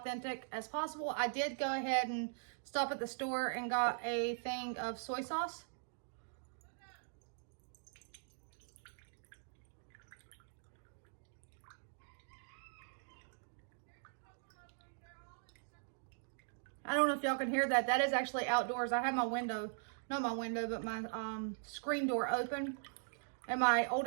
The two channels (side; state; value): left; silent; digital silence